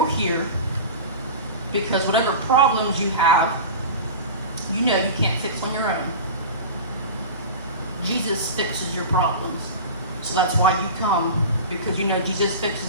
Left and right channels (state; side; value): inverted; both; correlation -0.31